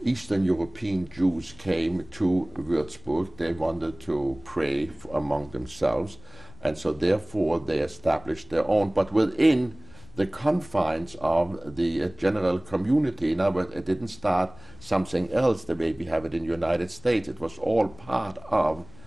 Eastern European Jews came to Würzburg. They wanted to pray among themselves, and so therefore they established their own, but within the confines of the general community. Now, it didn't start something else the way we have it in the United States. It was all part of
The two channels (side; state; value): left; noise; rumble, 22 dB below the sound